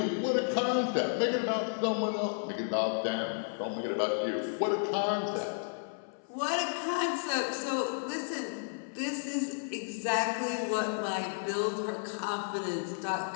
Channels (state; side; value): silent; right; 56 dB below the other